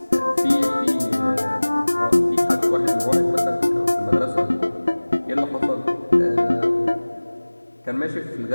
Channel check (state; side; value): inverted; both; correlation -1.00